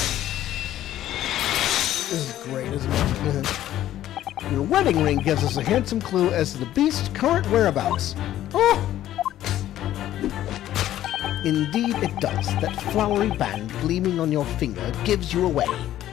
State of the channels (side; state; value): right; quieter; 12.8 dB